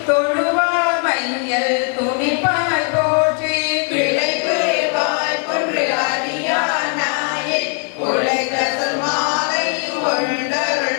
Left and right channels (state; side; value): quieter; right; 39.4 dB